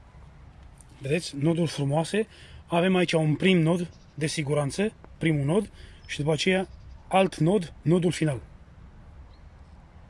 Vedeți? Noduri frumoase. Avem aici un prim nod de siguranță, primul nod, și după aceea alt nod, nodul final.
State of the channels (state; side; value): identical; both; correlation 1.00